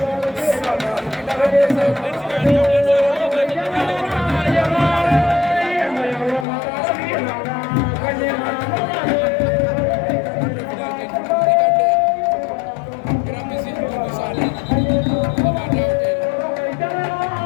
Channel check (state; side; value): drops out; right; at 6.5 s